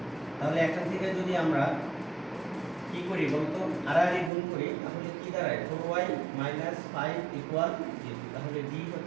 তাহলে এখান থেকে যদি আমরা কি করি বলতো, আড়াআড়ি গুণ করি, তাহলে কি দাঁড়ায়? 4y - 5 = 0। তাহলে ডি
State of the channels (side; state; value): left; drops out; at 4.3 s